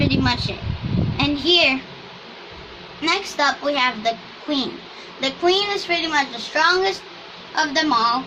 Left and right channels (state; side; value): identical; both; correlation 1.00